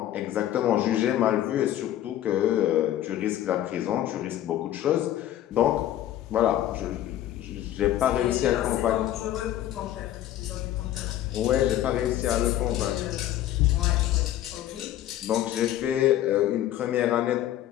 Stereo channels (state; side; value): quieter; right; 12.7 dB